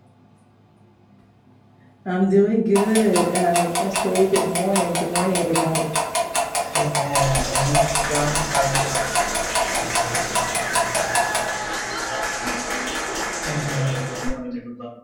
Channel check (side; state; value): both; identical; correlation 1.00